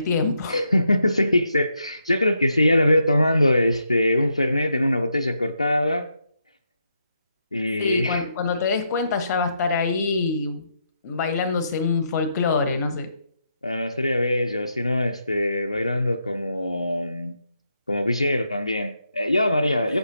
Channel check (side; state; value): both; inverted; correlation -0.80